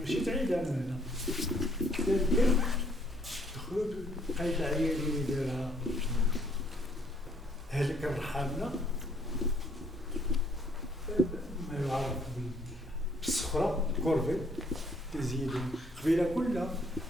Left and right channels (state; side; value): normal; both; correlation 0.64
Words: تعيد انا هنا دخلوا لقيت العيال اللي دارها هلك الرحامنا ما يعرف بالصخره كورفي تزيدوا قبيله كلها